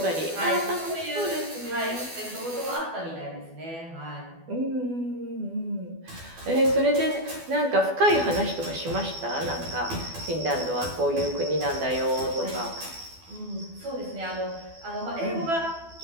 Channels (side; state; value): left; late; 12 ms